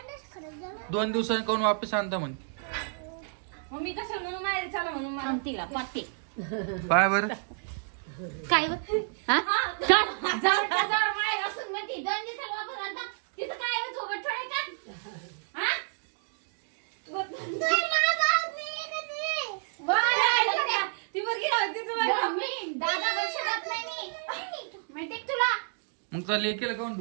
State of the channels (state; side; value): silent; left; digital silence